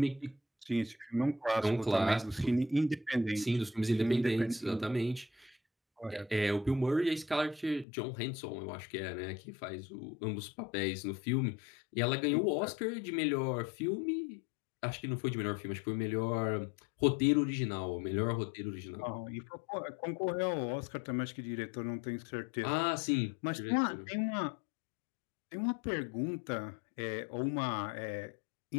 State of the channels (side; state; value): right; drops out; at 7.9 s